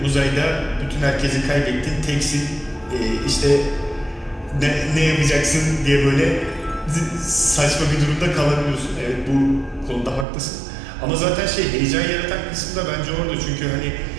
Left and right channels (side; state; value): left; drops out; at 10.2 s